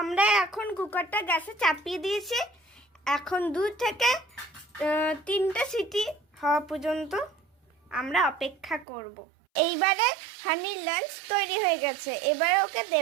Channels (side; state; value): left; drops out; at 8.8 s